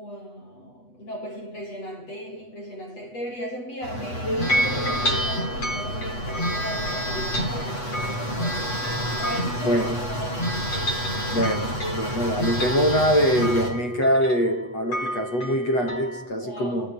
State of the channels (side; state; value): right; late; 8.1 ms